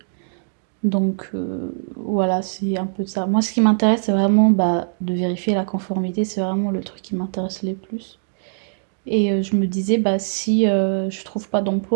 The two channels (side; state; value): left; silent; digital silence